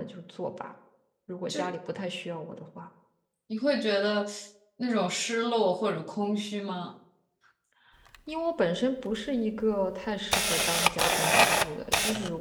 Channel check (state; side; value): identical; both; correlation 1.00